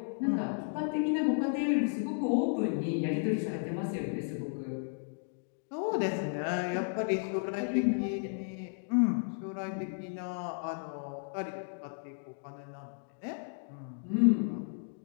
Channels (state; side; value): silent; right; digital silence